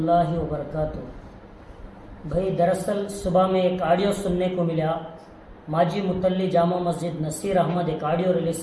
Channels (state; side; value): identical; both; correlation 1.00